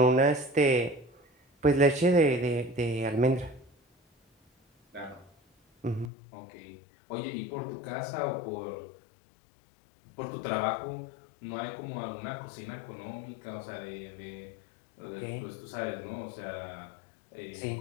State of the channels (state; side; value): drops out; right; at 6.1 s